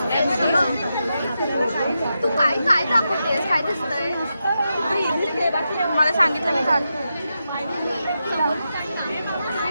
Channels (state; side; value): inverted; both; correlation -0.87